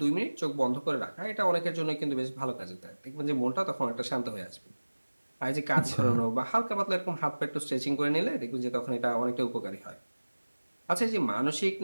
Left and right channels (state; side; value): inverted; both; correlation -1.00